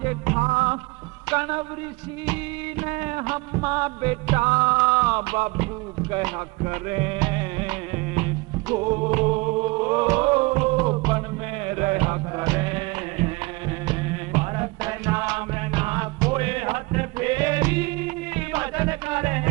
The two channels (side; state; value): left; quieter; 25.2 dB